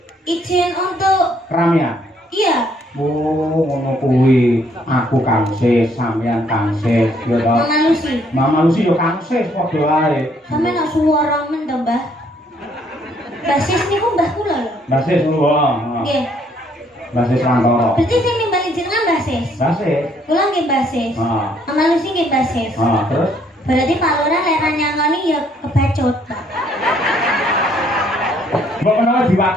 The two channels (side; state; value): both; normal; correlation 0.66